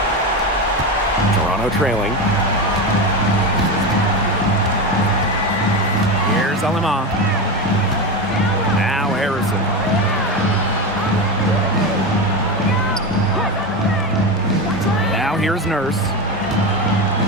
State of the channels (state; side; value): normal; both; correlation 0.18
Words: Toronto trailing. Here's Alemán. Now Harrison. Now here's Nurse.